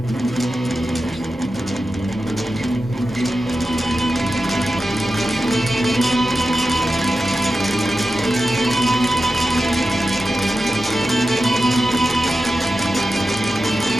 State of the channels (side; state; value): left; noise; hum, 26 dB below the sound